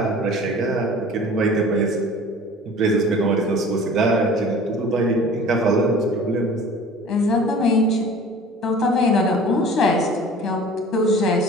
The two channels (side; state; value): both; normal; correlation 0.44